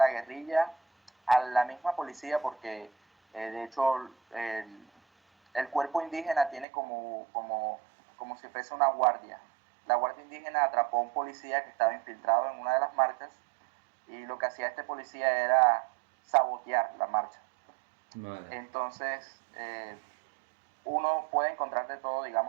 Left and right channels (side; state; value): left; drops out; at 6.7 s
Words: guerrilla, a la misma policía, porque de hecho el cuerpo indígena tiene como si fuese una guardia. La guardia indígena atrapó a un policía que estaba infiltrado en una de las marchas y lo que hacía este policía era sabotear la marcha. vale. Entonces, uno puede encontrar de todo,